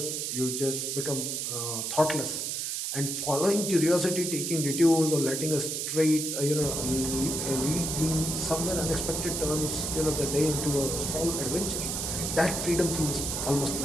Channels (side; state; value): right; noise; hiss, 2 dB below the sound